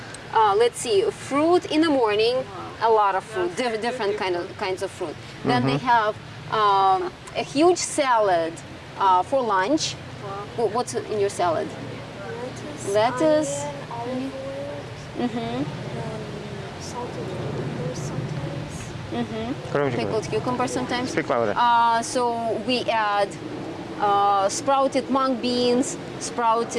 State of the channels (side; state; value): both; identical; correlation 1.00